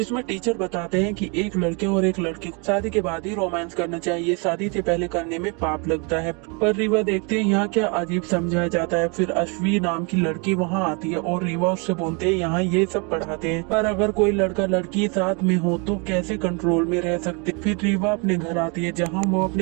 टीचर बताते हैं कि एक लड़के और एक लड़की को शादी के बाद ही रोमांस करना चाहिए, शादी से पहले करने में पाप लगता है। पर रीवा देखते हैं यहाँ क्या अजीब समझाया जाता है। फिर अश्वी नाम की लड़की वहाँ आती है और रीवा उससे बोलते हैं यहाँ ये सब पढ़ाते हैं, पर अगर कोई लड़का लड़की साथ में हो तो कैसे कंट्रोल में रह सकते। फिर रीवा अपने घर आती है जहाँ वो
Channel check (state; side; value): quieter; left; 33.0 dB